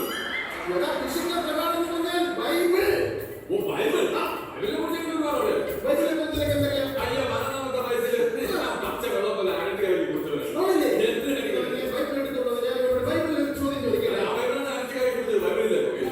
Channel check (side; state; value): both; identical; correlation 1.00